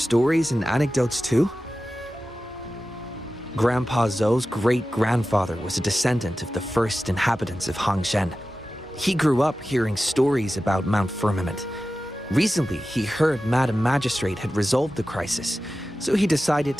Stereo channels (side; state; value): both; normal; correlation 0.94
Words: and anecdotes too? Grandpa Zhou's great-grandfather was a descendant of the first inhabitants of Hangzhen. He grew up hearing stories about Mount Firmament. Recently, he heard Madam Magistrate had resolved the crisis, so he decided